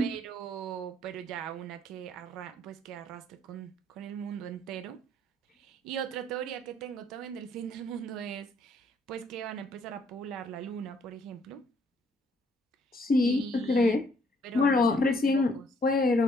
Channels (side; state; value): both; normal; correlation 0.66